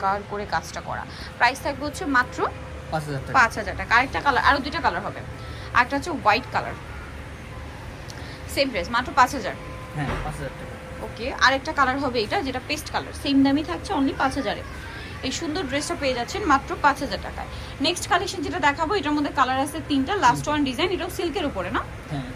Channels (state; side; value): identical; both; correlation 1.00